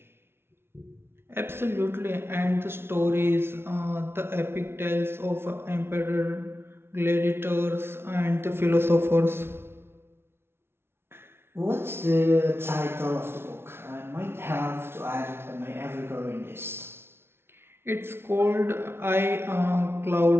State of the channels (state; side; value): late; left; 0.12 ms